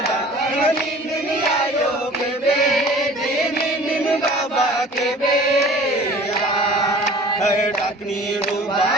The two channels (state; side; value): normal; both; correlation 0.46